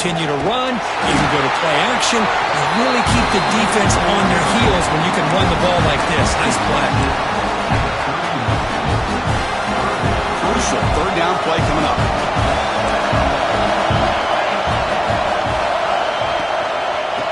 to run. You can go to play action. You really keep the defense on their heels when you can run the ball like this. Nice play. Crucial third down play coming up.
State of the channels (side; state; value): both; identical; correlation 1.00